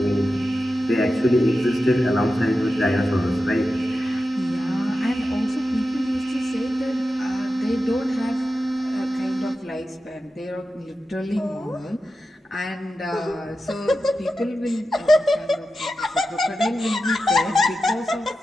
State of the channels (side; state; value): both; normal; correlation 0.91